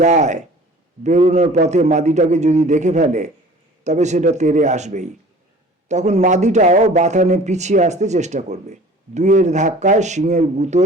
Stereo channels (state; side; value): normal; both; correlation 0.46